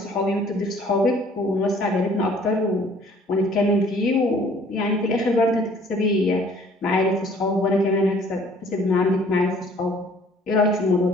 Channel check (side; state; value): both; normal; correlation 0.56